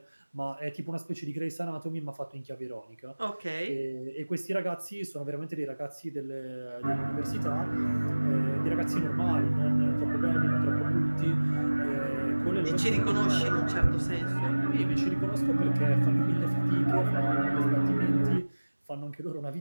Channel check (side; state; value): both; inverted; correlation -1.00